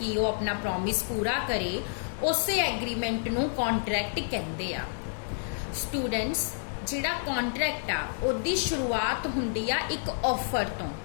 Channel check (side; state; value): right; silent; digital silence